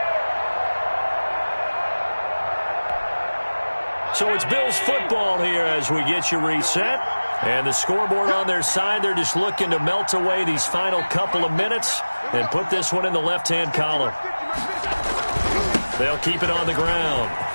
So it's Bills football here as we get you reset. And the scoreboard on their side, they're just looking to melt away these final couple of minutes and put this one in the left-hand column. They'll keep it on the ground.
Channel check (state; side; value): inverted; both; correlation -1.00